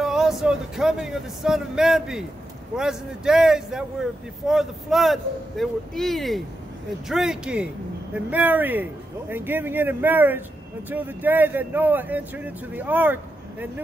also the coming of the Son of Man be. Whereas in the days that were before the flood, they were eating and drinking and marrying and giving in marriage until the day that Noah entered into the ark and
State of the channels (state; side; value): normal; both; correlation 0.87